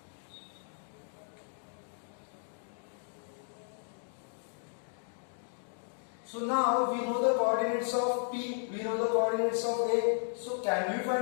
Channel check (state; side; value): silent; right; digital silence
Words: So now we know the coordinates of P, we know the coordinates of A. So can we